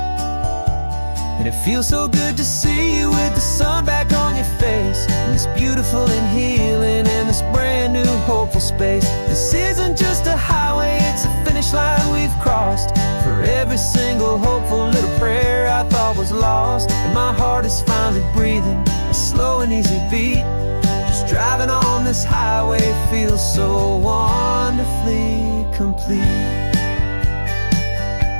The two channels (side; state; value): both; inverted; correlation -1.00